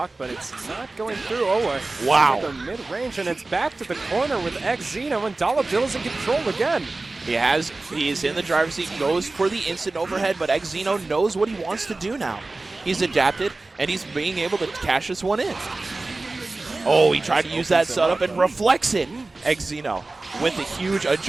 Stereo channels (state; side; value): quieter; left; 3.3 dB